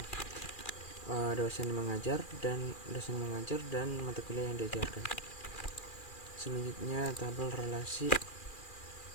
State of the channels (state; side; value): late; right; 2.4 ms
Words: Dosen mengajar dan mata kuliah yang diajarkan. Selanjutnya tabel relasi